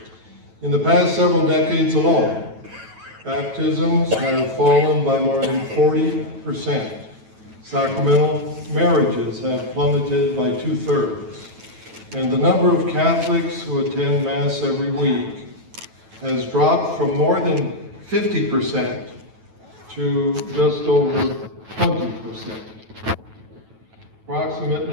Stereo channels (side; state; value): left; late; 9.2 ms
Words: In the past several decades alone, baptisms have fallen by more than 40%. Sacramental marriages have plummeted by 2/3. And the number of Catholics who attend Mass every week has dropped from more than 50% to just over 20%.